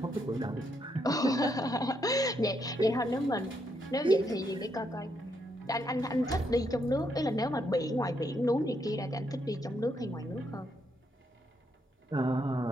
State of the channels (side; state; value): both; normal; correlation 0.77